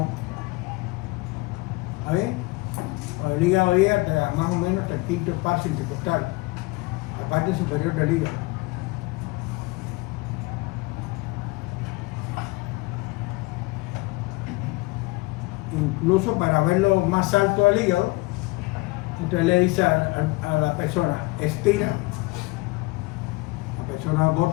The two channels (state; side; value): quieter; right; 23.6 dB